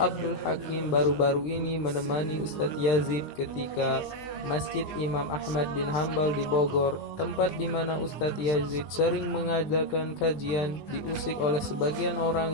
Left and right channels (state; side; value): late; right; 20 ms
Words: Abdul Hakim baru-baru ini menemani Ustadz Yazid ketika Masjid Imam Ahmad bin Hambal di Bogor, tempat di mana Ustadz Yazid sering mengadakan kajian, diusik oleh sebagian